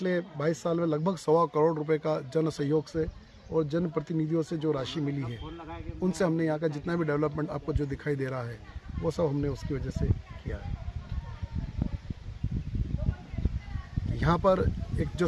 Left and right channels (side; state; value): both; identical; correlation 1.00